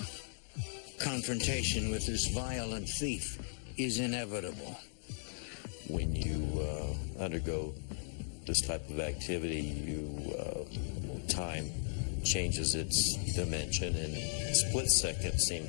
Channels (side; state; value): right; silent; digital silence